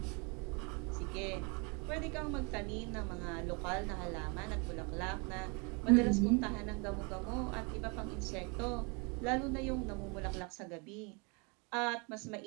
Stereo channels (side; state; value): left; quieter; 32.2 dB